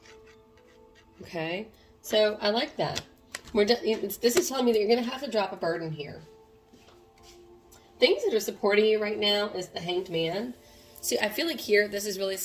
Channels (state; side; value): identical; both; correlation 1.00